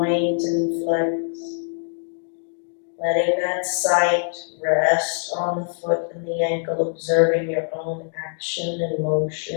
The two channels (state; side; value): silent; right; digital silence